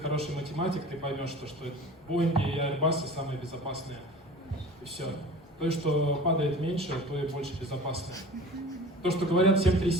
математик, ты поймешь, что Boeing и Airbus самые безопасные. И все. То, что падает меньше, то и больше безопасно. То, что говорят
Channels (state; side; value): normal; both; correlation 0.40